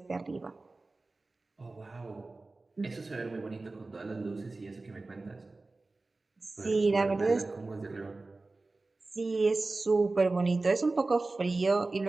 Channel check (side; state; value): left; quieter; 3.4 dB